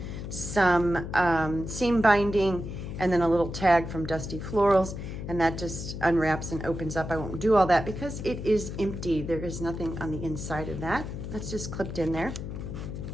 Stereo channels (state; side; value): noise; left; hum, 7 dB below the sound